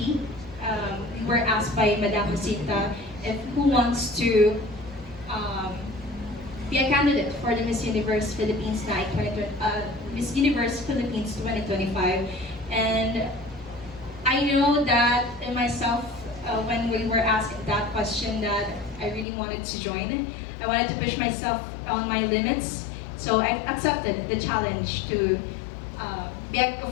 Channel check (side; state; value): right; drops out; at 19.2 s